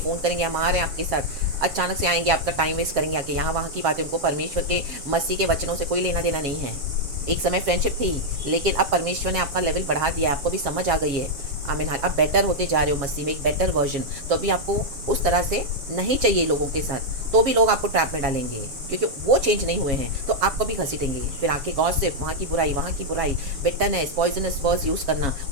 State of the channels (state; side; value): late; left; 7.2 ms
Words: करेंगे, हम आ रहे हैं आपके साथ, अचानक से आएंगे, आपका टाइम वेस्ट करेंगे आके यहाँ वहाँ की बातें। उनको परमेश्वर के मसीह के वचनों से कोई लेना देना नहीं है। एक समय फ्रेंडशिप थी, लेकिन अब परमेश्वर ने आपका लेवल बढ़ा दिया, आपको भी समझ आ गई है। आमीन। अब बेटर होते जा रहे हो मसीह में, एक बेटर वर्जन। तो अभी आपको उस तरह से नहीं चाहिए लोगों के साथ, तो भी लोग आपको ट्रैप में डालेंगे क्योंकि वो चेंज नहीं हुए हैं, तो आपको भी घसीटेंगे। फिर आके गॉसिप, वहाँ की बुराई, वहाँ की बुराई, बिटरनेस, पॉइजनस वर्ड्स यूज़ करना,